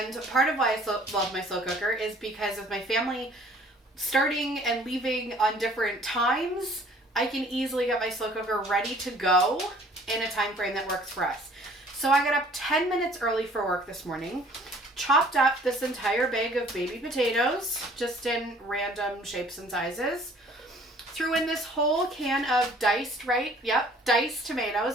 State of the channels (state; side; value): normal; both; correlation 0.55